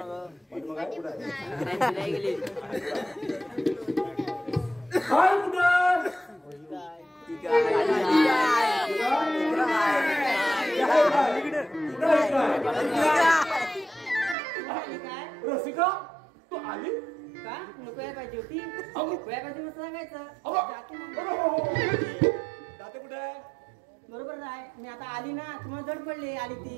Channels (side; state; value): left; drops out; at 14.4 s